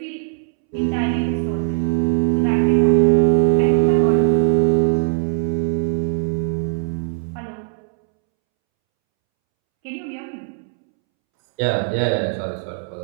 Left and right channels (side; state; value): left; silent; 66 dB below the other